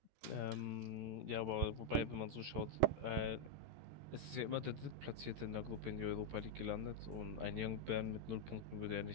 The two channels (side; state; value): left; late; 13 ms